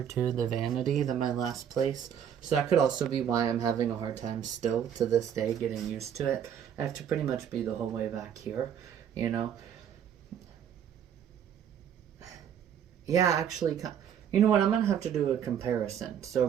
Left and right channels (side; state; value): left; quieter; 8.8 dB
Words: to the vanity than my last place. So that could also be why I'm having a hard time still to this day getting used to it. I have to pretty much be the whole way back here, you know. Yeah, actually, you know what, I'm going to have to do a comparison. So